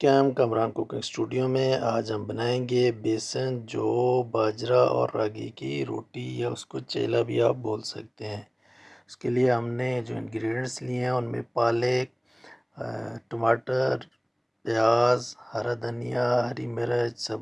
Kamran cooking studio میں آج ہم بنائیں گے بیسن جو باجرہ اور راگی کی روٹی یا اس کو چیلا بھی آپ بول سکتے ہیں۔ اس کے لیے ہم نے جو انگریڈینٹس لیے ہیں ان میں پالک، ٹماٹر، پیاز، ہرا دھنیا، ہری مرچ،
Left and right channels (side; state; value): both; identical; correlation 1.00